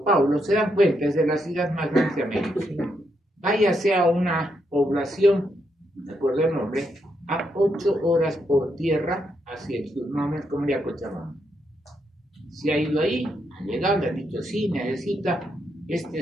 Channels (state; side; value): normal; both; correlation 0.79